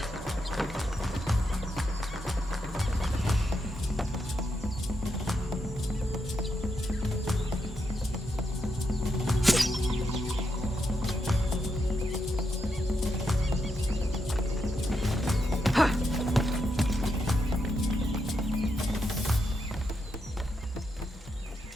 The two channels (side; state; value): both; normal; correlation 0.83